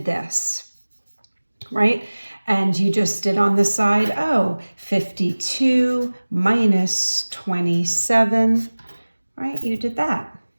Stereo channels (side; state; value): both; inverted; correlation -1.00